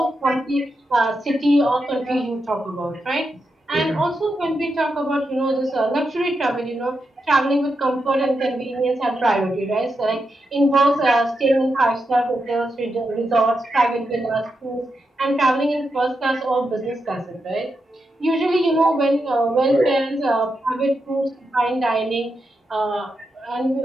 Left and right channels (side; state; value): both; normal; correlation 0.86